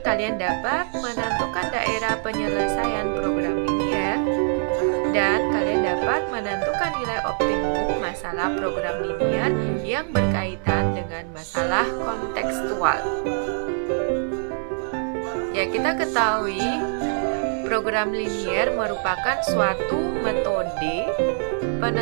kalian dapat menentukan daerah penyelesaian program linear dan kalian dapat menentukan nilai optimum masalah program linear yang berkaitan dengan masalah kontekstual. Ya, kita ketahui program linear merupakan suatu metode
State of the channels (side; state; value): left; silent; digital silence